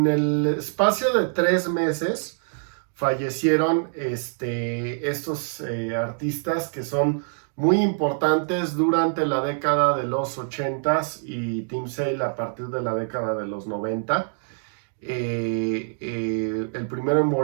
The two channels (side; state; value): left; silent; 62 dB below the other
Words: el espacio de 3 meses fallecieron estos artistas que son muy importantes durante la década de los 80s y Tim Sale a partir de la década de los 90. El primero en